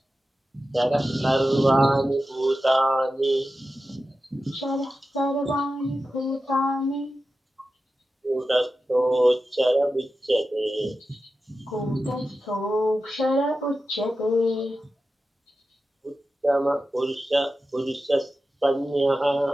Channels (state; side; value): normal; both; correlation 0.92